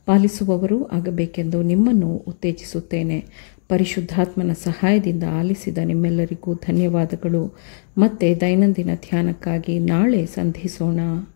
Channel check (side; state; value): right; silent; digital silence